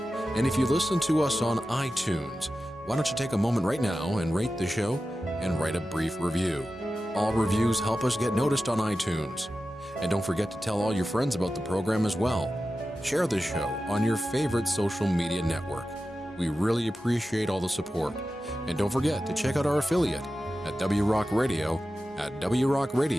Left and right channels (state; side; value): normal; both; correlation 0.93